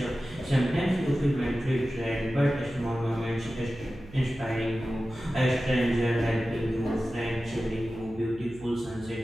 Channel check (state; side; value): noise; right; hum, 19 dB below the sound